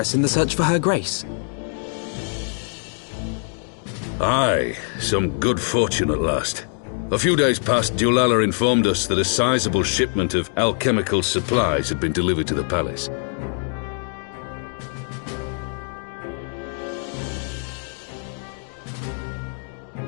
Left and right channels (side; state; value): right; silent; 63 dB below the other